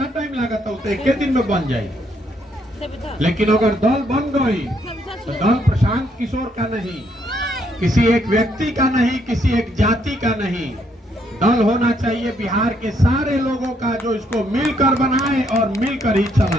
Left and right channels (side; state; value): both; normal; correlation 0.72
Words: टाइम लागत है? तो एक दिन में बन जाए। लेकिन अगर दल बन गई तो दल प्रशांत किशोर का नहीं, किसी एक व्यक्ति का नहीं, किसी एक जाति का नहीं। दल होना चाहिए बिहार के सारे लोगों का जो इसको मिलकर बनाए और मिलकर ही